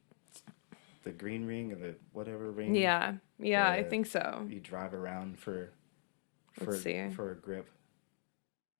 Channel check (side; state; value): right; silent; digital silence